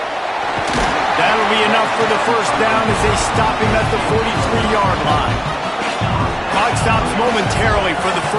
That'll be enough for the first down as they stop him at the 43-yard line. Clock stops momentarily for the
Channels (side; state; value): both; identical; correlation 1.00